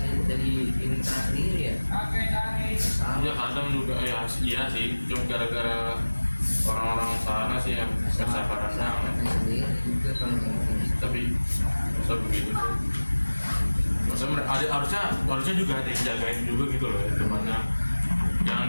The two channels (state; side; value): inverted; both; correlation -1.00